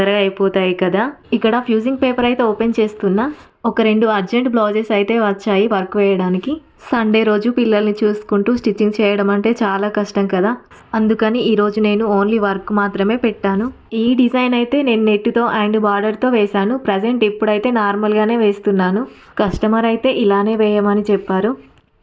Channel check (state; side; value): identical; both; correlation 1.00